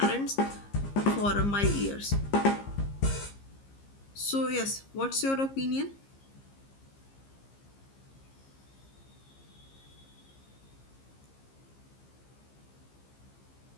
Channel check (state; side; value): late; right; 15 ms